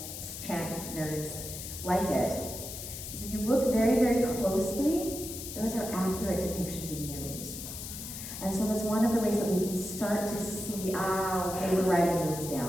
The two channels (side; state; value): left; noise; hiss, 9 dB below the sound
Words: chant nerds like it is if you look very, very closely, those are accurate depictions of neumes. And so that's one of the ways that we can start to see, okay, we're writing neumes